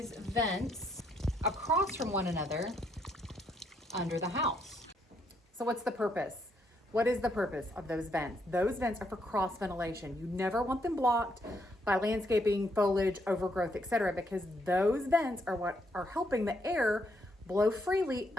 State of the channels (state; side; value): normal; both; correlation 0.74